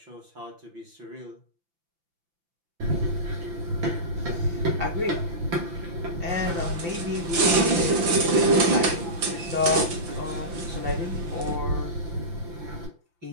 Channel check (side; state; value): left; late; 5.9 ms